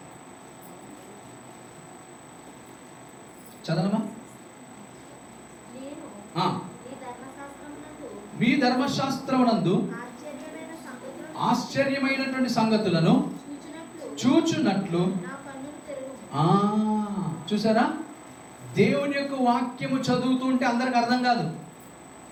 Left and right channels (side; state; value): both; identical; correlation 1.00